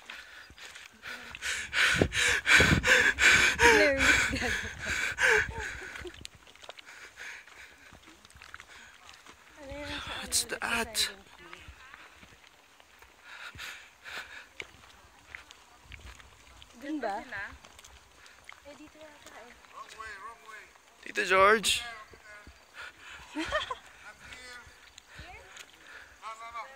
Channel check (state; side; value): identical; both; correlation 1.00